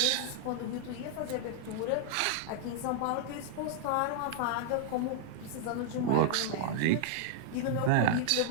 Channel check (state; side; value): different; both; correlation -0.01